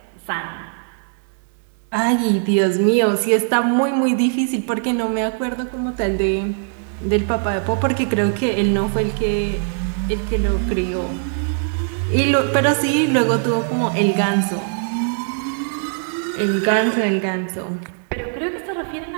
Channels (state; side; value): silent; left; digital silence